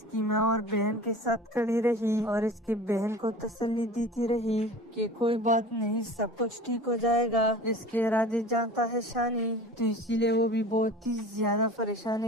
माँ और बहन के साथ खड़ी रही और इसकी बहन को तसल्ली देती रही कि कोई बात नहीं, सब कुछ ठीक हो जाएगा। इसके इरादे जानता है शानी, तो इसीलिए वो भी बहुत ही ज्यादा परेशान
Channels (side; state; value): both; normal; correlation 0.39